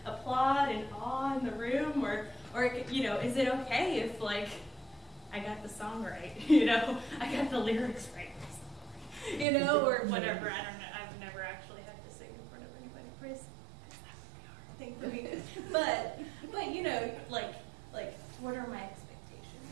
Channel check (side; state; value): left; drops out; at 9.5 s